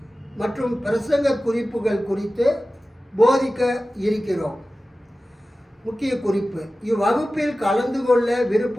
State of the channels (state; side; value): normal; both; correlation 0.95